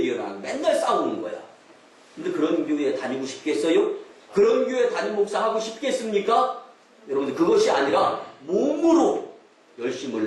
일어나고 맨날 싸우는 거야. 근데 그런 교회에 다니고 싶겠어요? 그런 교회 담임 목사 하고 싶겠습니까? 여러분들 그것이 아니라 몸으로 열심을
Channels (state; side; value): identical; both; correlation 1.00